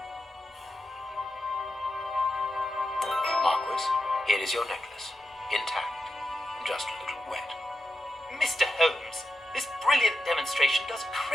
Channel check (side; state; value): both; normal; correlation 0.88